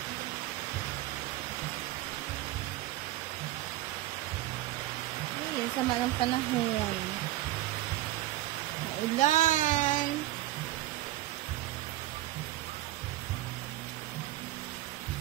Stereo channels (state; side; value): quieter; left; 16.0 dB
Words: Ayun, sama ng panahon. Maulan.